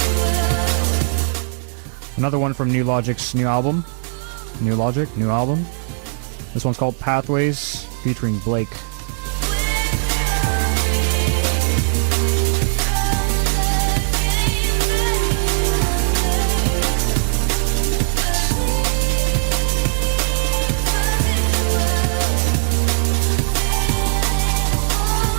Another one from New Logic's new album. New Logic, new album. This one's called Pathways, featuring Blake.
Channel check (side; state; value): left; silent; 66 dB below the other